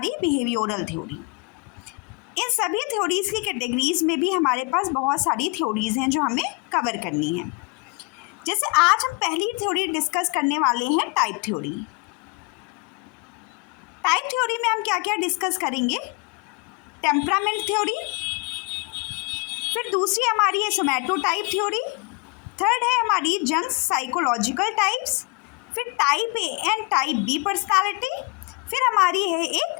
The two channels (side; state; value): right; quieter; 29.2 dB